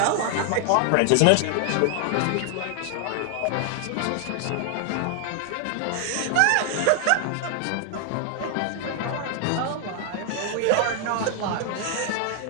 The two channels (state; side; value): different; both; correlation 0.00